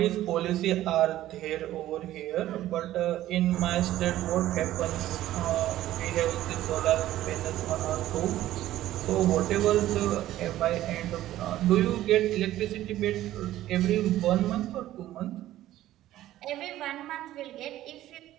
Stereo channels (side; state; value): left; quieter; 14.1 dB